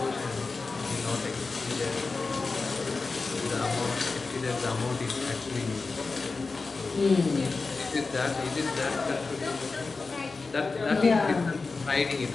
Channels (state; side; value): quieter; right; 4.1 dB